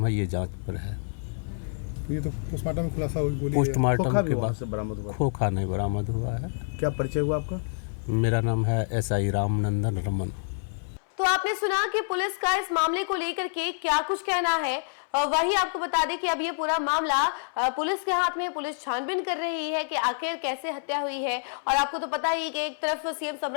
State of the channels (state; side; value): silent; right; 60 dB below the other